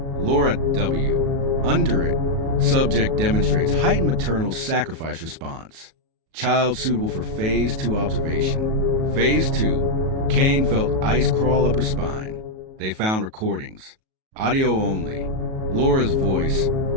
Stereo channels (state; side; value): late; left; 37 ms